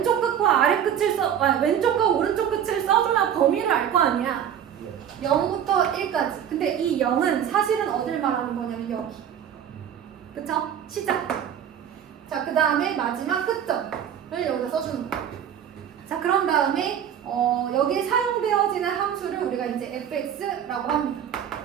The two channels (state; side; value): quieter; left; 9.2 dB